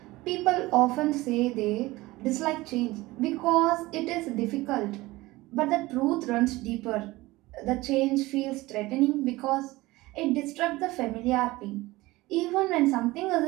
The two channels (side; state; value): left; quieter; 19.7 dB